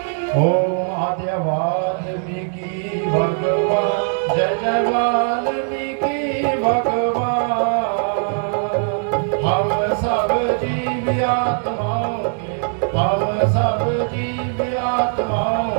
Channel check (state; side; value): silent; left; 58 dB below the other